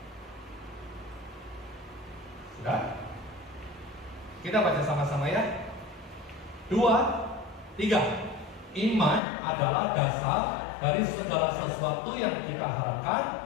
Sudah? Kita baca sama-sama ya. 2, 3. Iman adalah dasar dari segala sesuatu yang kita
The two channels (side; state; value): right; drops out; at 9.2 s